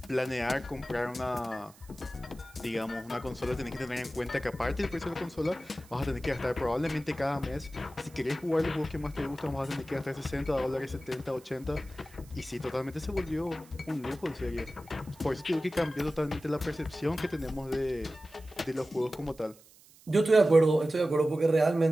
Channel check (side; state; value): right; noise; hiss, 25 dB below the sound